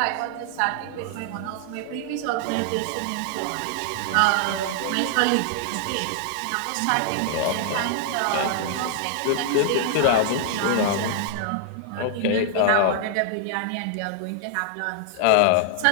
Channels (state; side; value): different; both; correlation -0.01